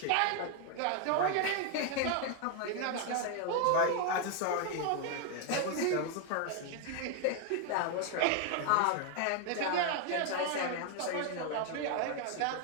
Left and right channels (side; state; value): both; different; correlation 0.01